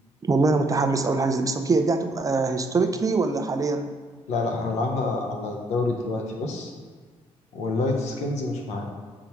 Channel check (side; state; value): both; normal; correlation 0.68